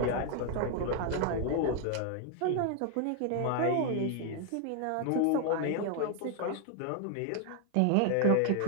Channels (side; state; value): both; different; correlation 0.00